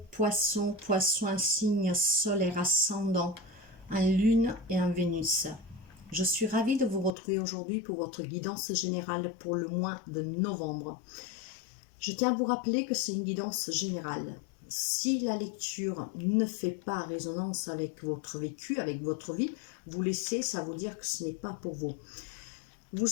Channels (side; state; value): right; drops out; at 7.1 s